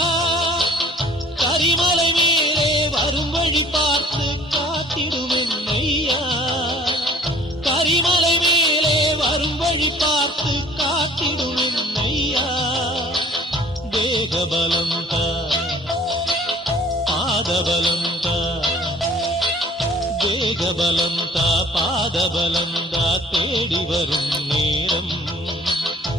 கரிமலை மேலே வரும் வழி பார்த்து காத்திடுவேன் ஐயா, கரிமலை மேலே வரும் வழி பார்த்து காத்திடுவேன் ஐயா. தேகபலம் தா, பாதபலம் தா, தேகபலம் தா, பாதபலம் தா, தேடி வரும் நேரம்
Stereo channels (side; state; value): both; normal; correlation 0.52